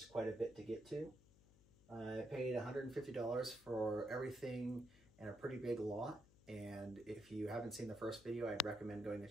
quite a bit to get to. I paid $150 for everything in a pretty big lot, and if you haven't seen the first video, I'd recommend going to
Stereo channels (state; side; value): noise; left; hum, 25 dB below the sound